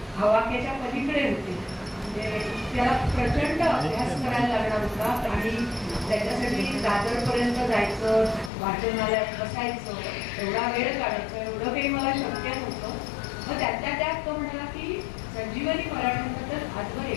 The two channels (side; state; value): right; drops out; at 8.5 s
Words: हवाक्याच्या पलीकडे होते. त्याला प्रचंड अभ्यास करायला लागणार होता आणि त्याच्यासाठी दादरपर्यंत जायचं, वाचनालयात बसायचं, एवढा वेळ काढायचं, एवढं काही मला शक्य नव्हतं. मग त्यातल्या त्यात तो म्हणाला की संजीवनी मराठीबद्दल आजवर